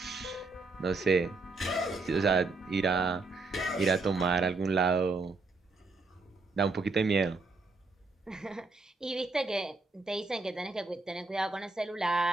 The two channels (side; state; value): left; quieter; 3.7 dB